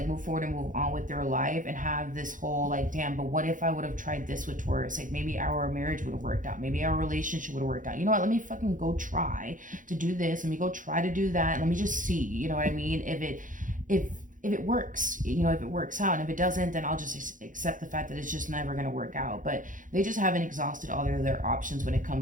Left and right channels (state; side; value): late; left; 0.38 ms